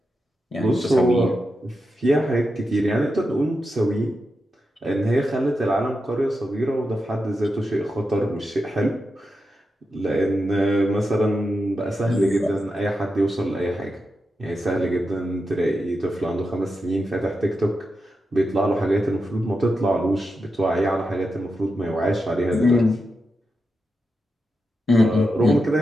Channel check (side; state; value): both; normal; correlation 0.88